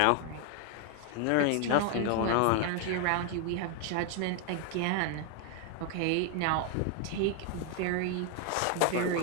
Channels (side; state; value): both; different; correlation 0.00